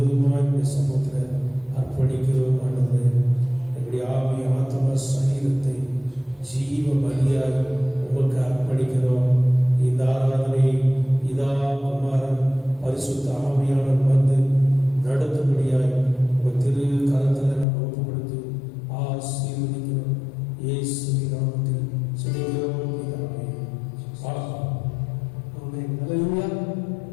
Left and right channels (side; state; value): right; drops out; at 17.7 s